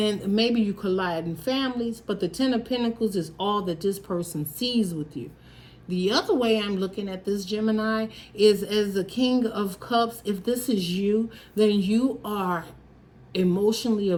maybe you collide in families. But the 10 of Pentacles is all that this person sees with you. The other way I'm looking at this, Gemini, is as the King of Cups. If this is you, then you are emotionally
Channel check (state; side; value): identical; both; correlation 1.00